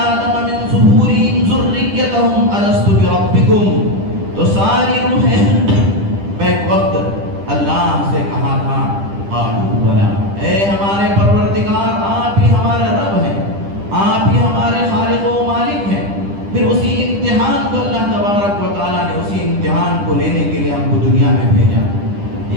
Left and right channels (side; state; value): left; late; 10 ms